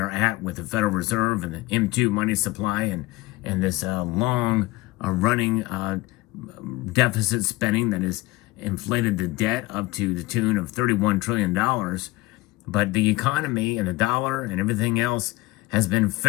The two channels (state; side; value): quieter; right; 20.4 dB